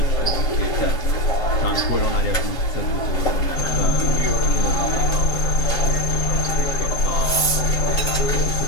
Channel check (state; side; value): late; right; 7.6 ms